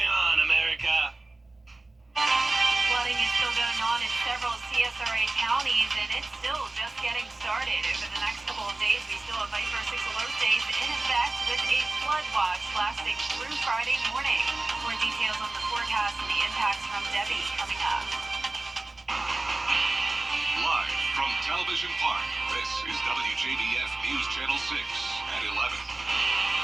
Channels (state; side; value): quieter; left; 3.0 dB